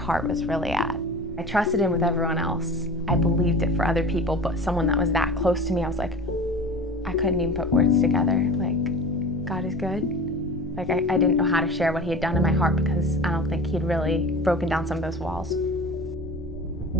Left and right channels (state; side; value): normal; both; correlation 0.35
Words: was really at. I trusted him with everyone else. I believed it for other people, but someone that was that close to me, I was like, I couldn't even put words together. Like, God is good. Like, I didn't know how to share what he had done in my heart because I don't think he'd really broken down some of those walls.